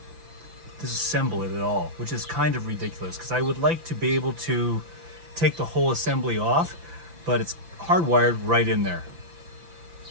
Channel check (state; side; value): late; left; 5.9 ms